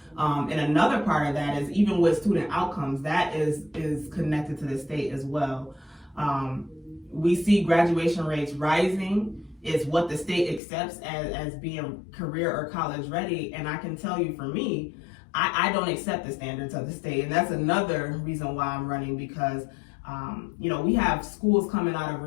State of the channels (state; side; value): drops out; right; at 10.6 s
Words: And another part of that is, even with student outcomes, that is connected to the state as well. We see graduation rates rising. It's what the state accepts as being career or college ready. And I can tell you, for me, I don't accept the standards of the state. And that's another reason why I'm running, because you know, we have schools coming out